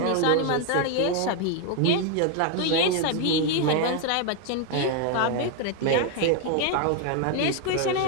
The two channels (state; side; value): different; both; correlation 0.00